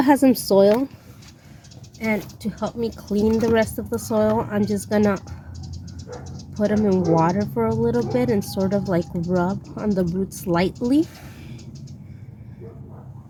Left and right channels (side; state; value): both; identical; correlation 1.00